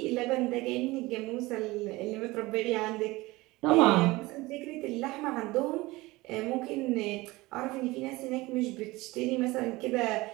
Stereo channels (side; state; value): left; quieter; 20.8 dB